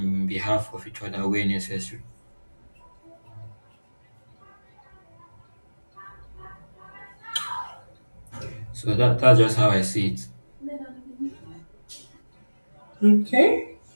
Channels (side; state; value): both; inverted; correlation -1.00